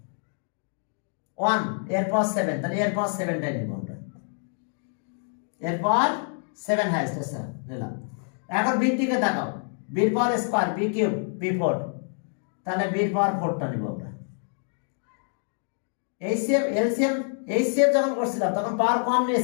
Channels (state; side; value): silent; right; 59 dB below the other